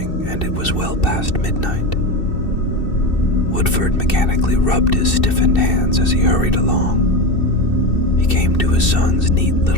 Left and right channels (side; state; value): right; late; 2.6 ms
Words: and it was well past midnight. Woodford mechanically rubbed his stiffened hands as he hurried along. He came to his son's neat